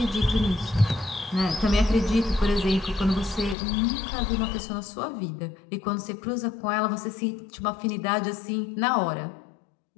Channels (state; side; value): drops out; right; at 3.6 s